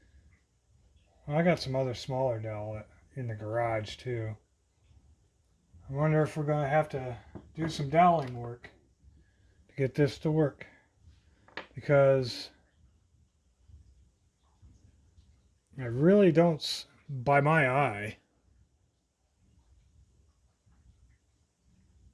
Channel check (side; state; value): both; identical; correlation 1.00